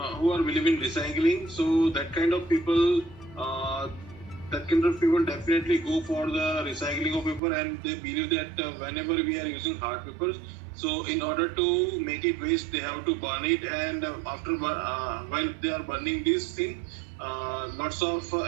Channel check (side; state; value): left; drops out; at 7.4 s